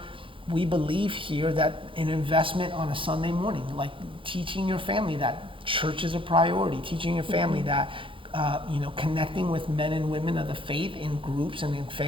we believe here that an investment on a Sunday morning, like teaching your family that church is a priority, teaching your family that connecting with men and women of the faith in groups and in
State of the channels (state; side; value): late; left; 0.25 ms